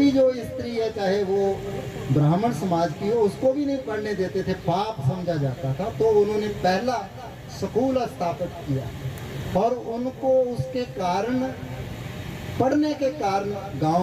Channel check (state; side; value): identical; both; correlation 1.00